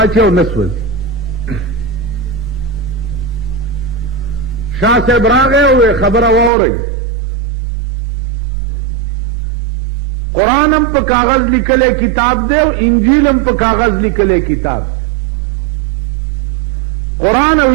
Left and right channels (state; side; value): drops out; left; at 6.5 s